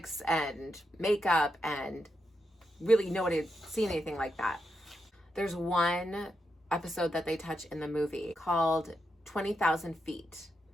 and makeup, and really nobody had seen anything like that. There's one episode that they touch in the movie called 20,000 Feet.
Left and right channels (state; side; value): normal; both; correlation 0.84